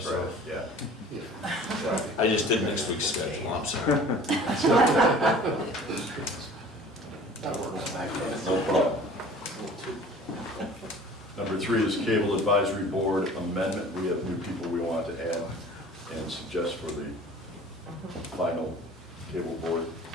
Friday, yeah. I just did next week's schedule, I'm sorry. No problem. Number 3 is Cable Advisory Board amendment. We have new people we want to add and suggest for the final cable board.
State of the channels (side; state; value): both; normal; correlation 0.46